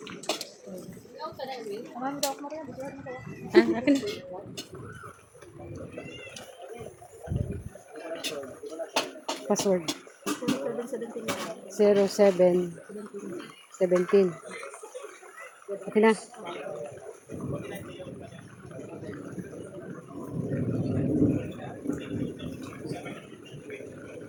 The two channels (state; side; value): identical; both; correlation 1.00